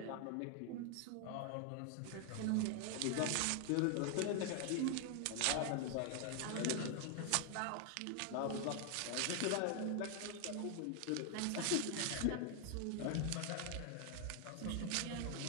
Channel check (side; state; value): both; different; correlation 0.00